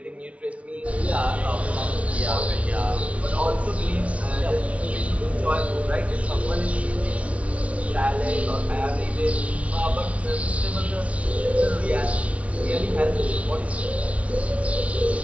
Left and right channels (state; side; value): late; left; 0.064 ms